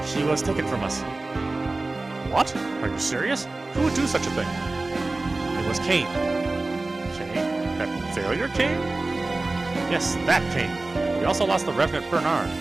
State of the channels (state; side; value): quieter; left; 3.2 dB